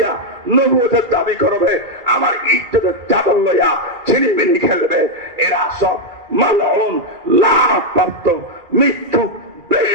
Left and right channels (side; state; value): left; late; 2.3 ms